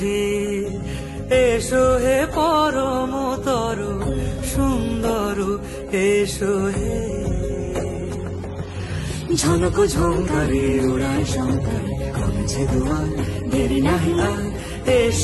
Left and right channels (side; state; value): both; identical; correlation 1.00